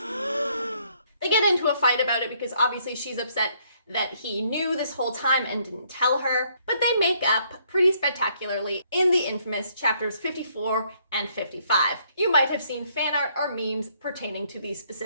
They get into a fight about it because obviously she's upset that he knew this whole time and didn't tell her, but they make up pretty spectacularly in the infamous chapters 54 and 55. You might have seen fan art or memes pertaining to these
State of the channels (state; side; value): inverted; both; correlation -0.68